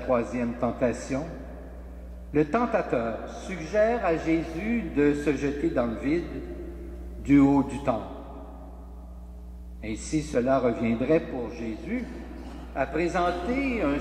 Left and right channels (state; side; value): identical; both; correlation 1.00